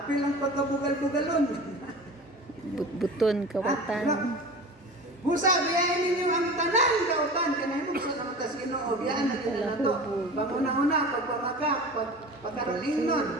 ang pagkabugal-bugalon. Buton, kawatan. Busa, biyahin ninyo ang tanan, dautan. Kanay mo sa namatas Ginoo, biyahan natin na to. Pag-una-una, pagpamakak,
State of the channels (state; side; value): normal; both; correlation 0.36